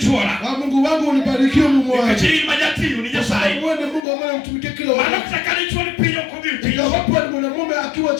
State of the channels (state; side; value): drops out; right; at 4.0 s